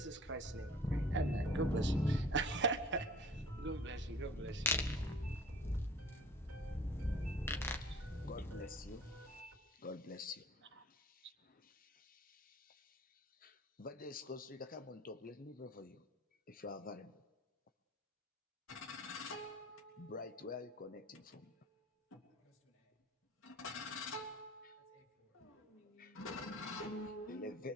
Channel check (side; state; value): both; normal; correlation 0.47